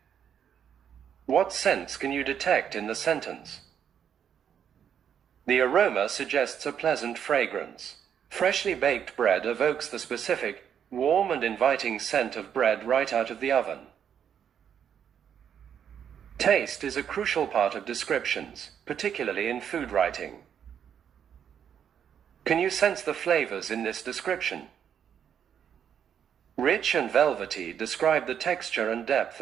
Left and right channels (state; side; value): quieter; left; 8.5 dB